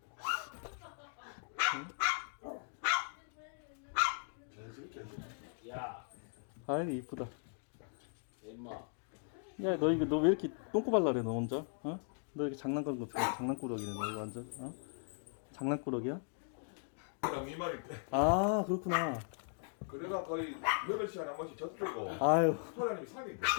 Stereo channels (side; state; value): right; silent; 52 dB below the other